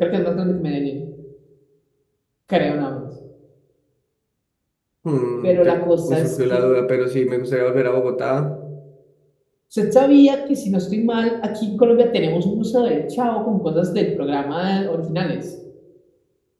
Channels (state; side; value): identical; both; correlation 1.00